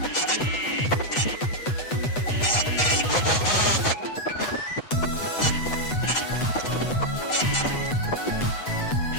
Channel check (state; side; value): late; right; 8.1 ms